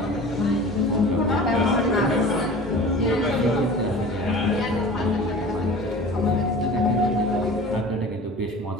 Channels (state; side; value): normal; both; correlation 0.39